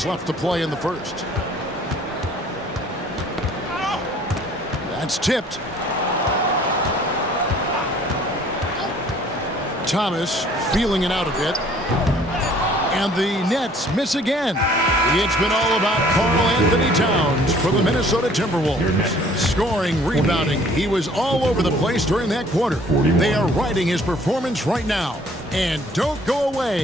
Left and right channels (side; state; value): both; normal; correlation 0.56